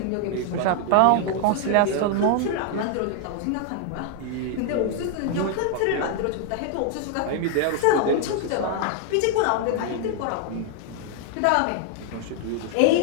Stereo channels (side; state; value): both; different; correlation 0.00